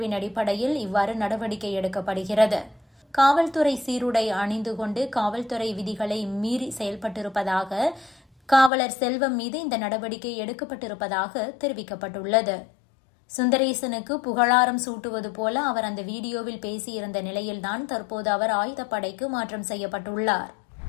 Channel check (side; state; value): right; drops out; at 8.7 s